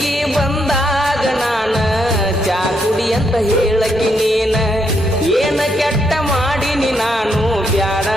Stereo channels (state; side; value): normal; both; correlation 0.77